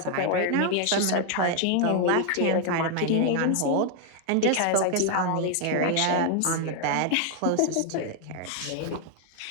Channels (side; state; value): both; different; correlation 0.00